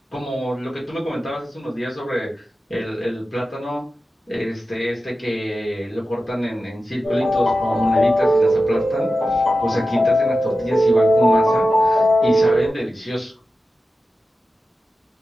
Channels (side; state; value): both; normal; correlation 0.93